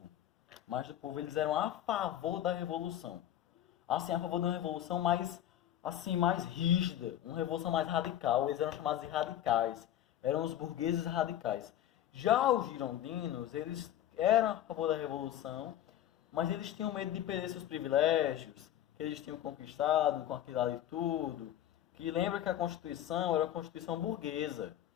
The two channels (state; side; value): quieter; right; 11.7 dB